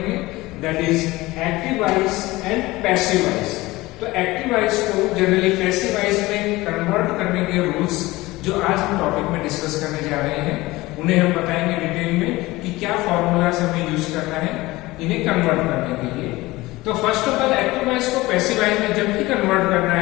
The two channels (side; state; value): right; quieter; 19.8 dB